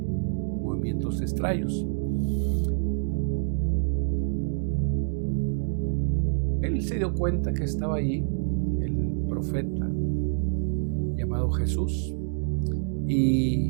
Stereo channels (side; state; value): left; silent; digital silence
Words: movimientos extraños. Él se dio cuenta que estaba allí el profeta llamado Jesús,